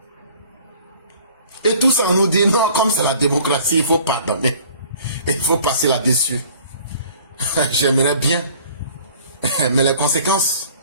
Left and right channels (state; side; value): inverted; both; correlation -0.52